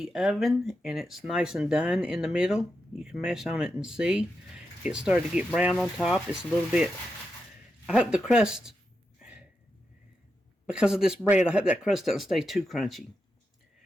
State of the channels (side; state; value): both; normal; correlation 0.87